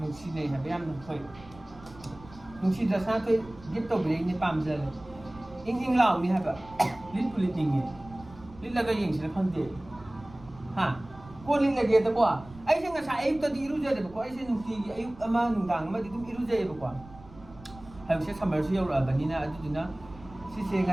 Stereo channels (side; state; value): right; noise; rumble, 20 dB below the sound